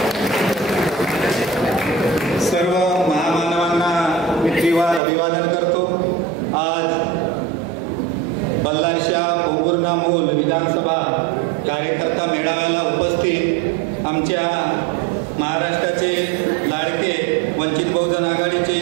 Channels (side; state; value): left; drops out; at 5.0 s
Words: सर्व महामानवांना मी त्रिवार अभिवादन करतो. आज बल्लारशा पोंभुर्णा-मूल विधानसभा कार्यकर्ता मेळाव्याला उपस्थित आमच्या महाराष्ट्राचे लाडके वंचित बहुजन आघाडीचे